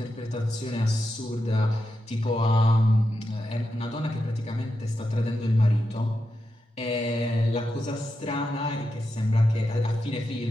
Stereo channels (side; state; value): both; normal; correlation 0.87